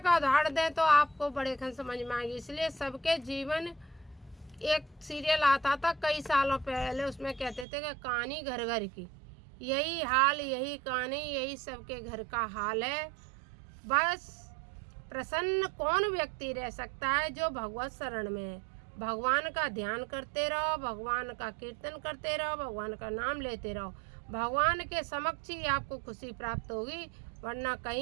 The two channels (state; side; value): drops out; left; at 7.7 s